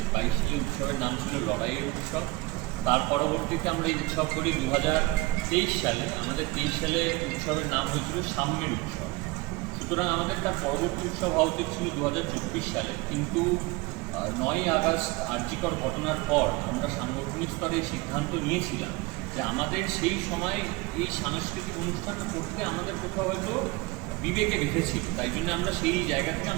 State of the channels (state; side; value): quieter; left; 22.4 dB